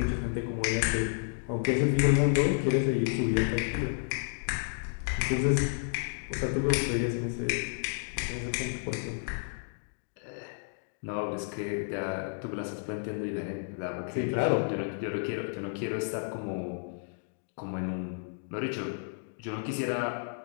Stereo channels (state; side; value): silent; right; digital silence